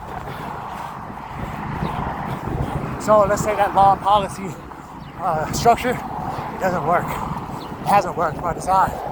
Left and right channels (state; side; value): identical; both; correlation 1.00